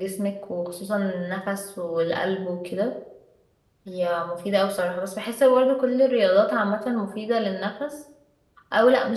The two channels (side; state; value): both; identical; correlation 1.00